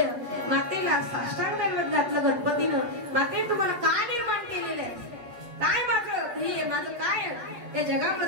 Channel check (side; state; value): left; late; 8.0 ms